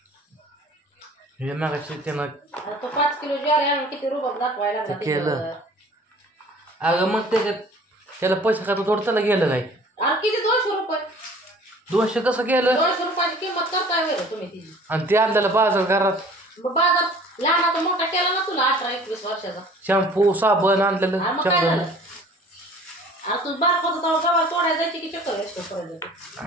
हे मागाशी त्यानं तो 5 किलो ज्वारी आणून किती रुबाब दाखवायला लागला केलं. अगं मग त्याला पैसे का थोडं त्याला गेलं काय आणि किती 200 रुपये 200 कसं गेलं 200 रुपयाची किंमत करताय वेळ तुम्ही तिची. आणि ते आणलेलं बाजार घरात मग बाजार लहानाचा मोठा केला ना तुला 18-21 वर्षाचा. शॅम्पू साबण आणलेलं आणि मग काय झालं आणि तू बारकाचं तेव्हा गव्हा तोडायला जायची की चक्कर असतो करायचं.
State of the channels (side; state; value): both; normal; correlation 0.49